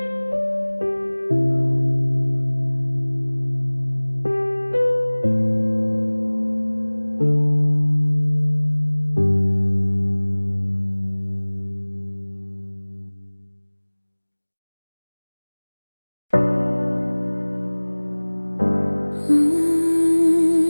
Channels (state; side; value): inverted; both; correlation -1.00